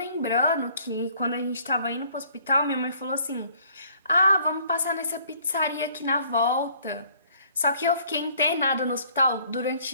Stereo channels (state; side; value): inverted; both; correlation -0.59